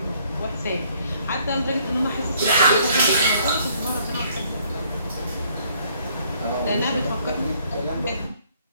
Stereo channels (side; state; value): both; inverted; correlation -0.64